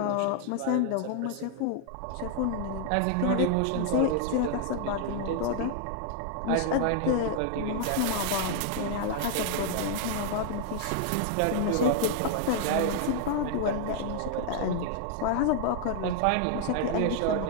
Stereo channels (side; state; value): both; different; correlation 0.00